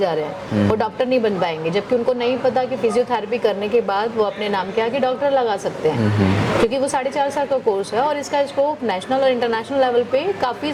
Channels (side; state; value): both; identical; correlation 1.00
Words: रहे हैं, वो डॉक्टर नहीं बन पाएंगे, जबकि उनको नहीं पता कि फिजियोथेरेपी करने के बाद वो अपने नाम के आगे डॉक्टर लगा सकते हैं, क्योंकि वो 4.5 साल का कोर्स है और इसका स्कोप नेशनल और इंटरनेशनल लेवल पे काफ़ी